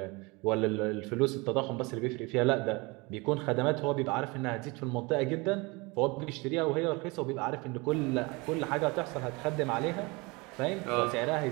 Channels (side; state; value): left; quieter; 26.1 dB